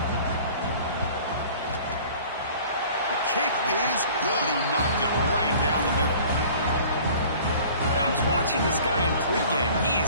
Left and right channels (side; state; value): both; inverted; correlation -0.48